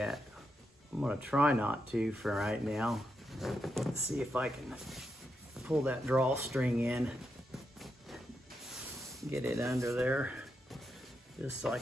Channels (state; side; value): normal; both; correlation 0.84